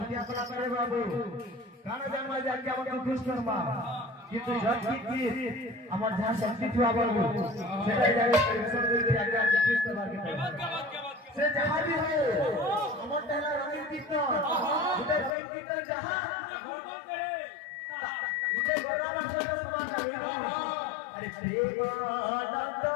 করা করে বাবু কারণ জানবা যে আজকে আমাকে খুশ করবা কিন্তু যতক্ষণ আমার যা শক্তি থুয়া বাবু সেটাই জায়গায় পরিশ্রম করতে আজকে খুশ করবার কে সে যাহা भी हो আমার তেলা রঙিন কীর্তন উদে প্রেম কীর্তন যাহা উদে গোরাবার সাথে সমান হবে আরে প্রেম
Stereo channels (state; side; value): drops out; right; at 15.3 s